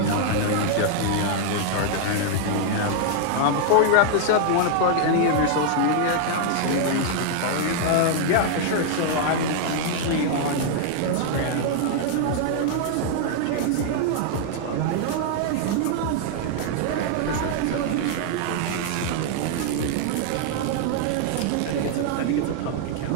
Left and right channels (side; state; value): both; different; correlation 0.00